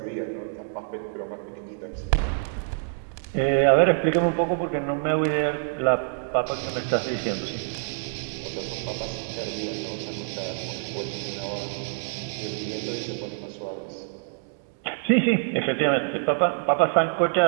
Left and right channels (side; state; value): left; silent; digital silence